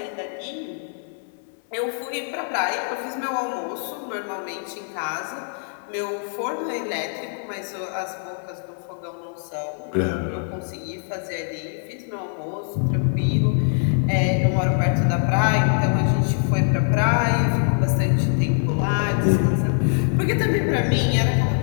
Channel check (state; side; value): silent; right; 59 dB below the other